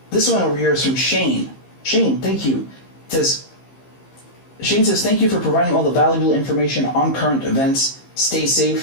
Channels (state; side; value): late; right; 15 ms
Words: This one over here is from Shane. Shane, thank you. Shane says, thank you for providing all the valuable information on current events. Stay